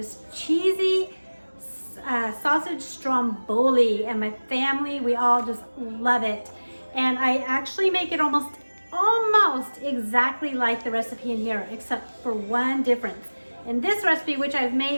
cheesy sausage stromboli, and my family, we all just love it. And I actually make it almost exactly like the recipe in here, except for one difference. In this recipe, which I've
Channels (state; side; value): inverted; both; correlation -1.00